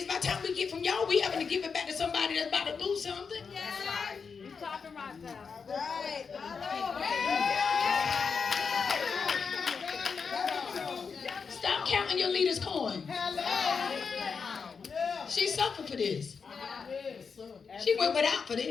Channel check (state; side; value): quieter; right; 5.6 dB